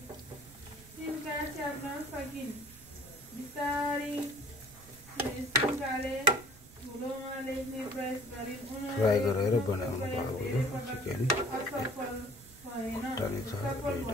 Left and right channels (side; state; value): right; noise; rumble, 21 dB below the sound